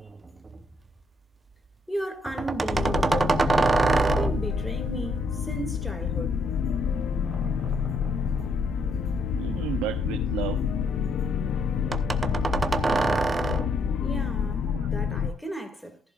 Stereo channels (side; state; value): both; normal; correlation 0.72